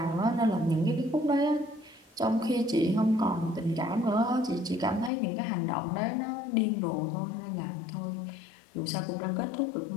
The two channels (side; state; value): right; drops out; at 5.1 s